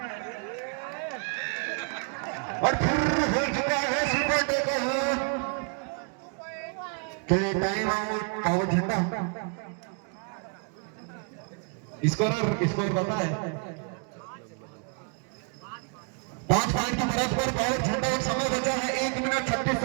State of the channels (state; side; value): quieter; left; 39.1 dB